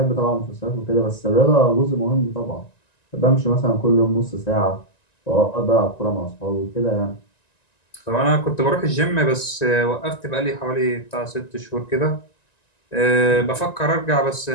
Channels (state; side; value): late; right; 1.9 ms